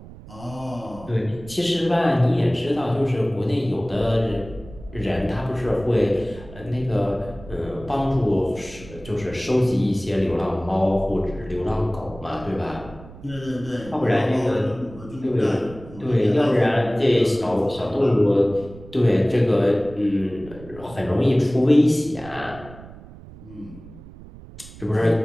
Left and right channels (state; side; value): noise; right; rumble, 18 dB below the sound